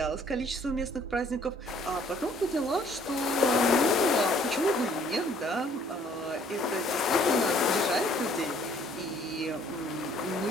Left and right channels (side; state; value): both; normal; correlation 0.60